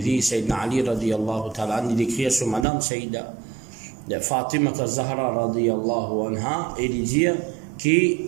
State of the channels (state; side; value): drops out; left; at 2.7 s